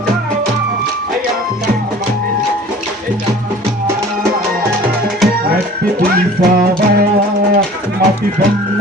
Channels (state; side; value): normal; both; correlation 0.45